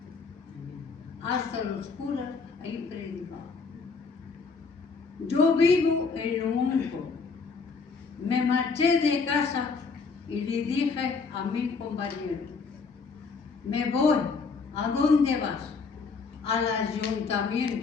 Hasta los curas he predicado. Yo vivo en lo único. Me marché de casa y le dije a mi compañero, me voy. ¿A dónde vas? Al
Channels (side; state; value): right; quieter; 4.7 dB